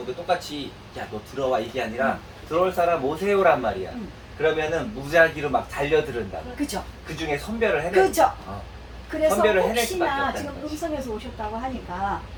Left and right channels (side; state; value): both; identical; correlation 1.00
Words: 똑같이 야 너 들어와 이게 아니라 들어올 사람 오세요란 말이야. 그러면은 무작위로 막 달려들은다. 그죠. 그 중에 선별을 해내. 그죠. 그래서 선별을 해낼 수밖에 혹시나 없다는 지금 거지. 음성에서 오셨다고 하니까